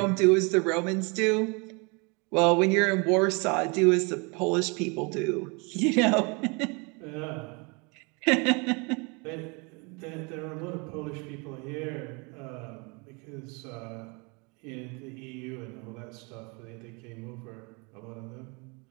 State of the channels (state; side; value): quieter; left; 30.8 dB